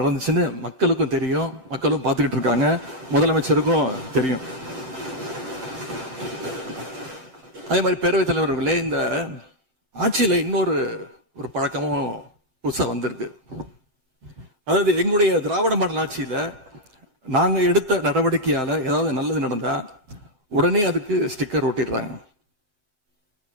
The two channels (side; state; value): left; late; 7.7 ms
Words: மக்களுக்கும் தெரியும், மக்களும் பார்த்துக்கிட்டு இருக்காங்க, முதலமைச்சருக்கும் தெரியும். அதே மாதிரி பேரவைத் தலைவர்களே, இந்த ஆட்சியில இன்னொரு பழக்கமும் புதுசா வந்திருக்கு. அதாவது எங்களுடைய திராவிட மாடல் ஆட்சியில நாங்க எடுத்த நடவடிக்கையால ஏதாவது நல்லது நடந்தா உடனே அதுக்கு ஸ்டிக்கர் ஒட்டிடுறாங்க.